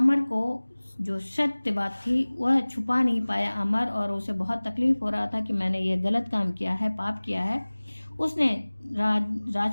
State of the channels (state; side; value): inverted; both; correlation -1.00